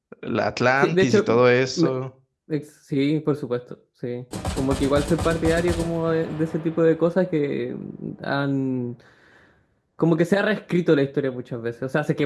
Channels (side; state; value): both; identical; correlation 1.00